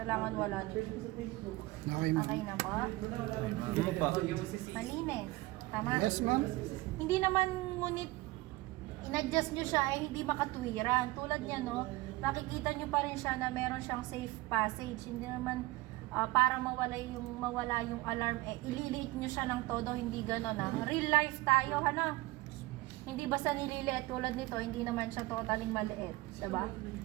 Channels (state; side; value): quieter; left; 20.2 dB